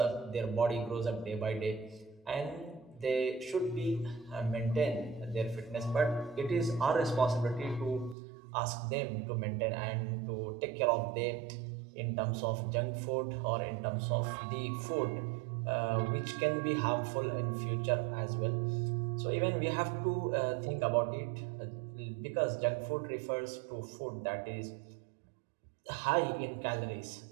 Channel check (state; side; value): drops out; left; at 8.2 s